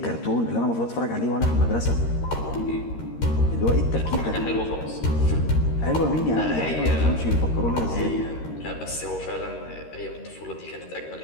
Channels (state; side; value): late; right; 13 ms